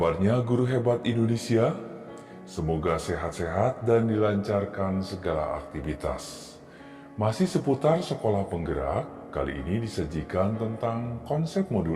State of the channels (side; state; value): both; identical; correlation 1.00